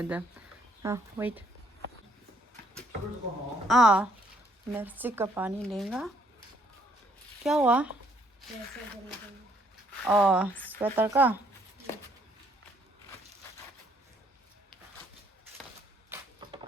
हाँ वेट मिर्ची का पानी लेगा क्या हुआ स्वेटर का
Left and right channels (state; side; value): normal; both; correlation 0.67